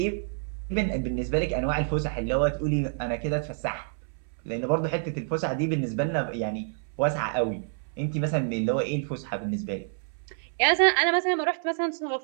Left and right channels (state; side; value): silent; left; 60 dB below the other